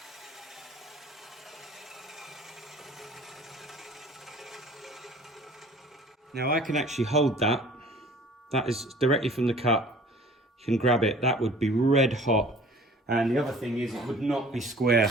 Now I can actually hold that. That is directly from the cut. You can grab it. That would be red hot. And the other thing is it would not be square,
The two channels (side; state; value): both; normal; correlation 0.48